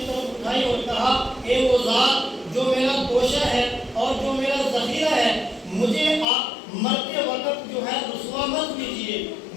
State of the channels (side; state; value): right; drops out; at 6.2 s